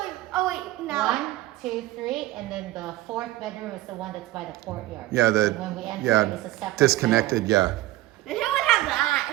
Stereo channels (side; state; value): left; quieter; 17.0 dB